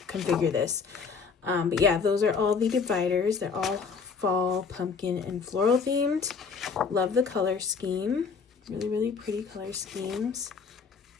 configure this. But yeah, those are all the dividers. They're all fall, pumpkin, and floral themed. Love the color scheme. Really pretty color schemes.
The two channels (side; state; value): right; quieter; 5.4 dB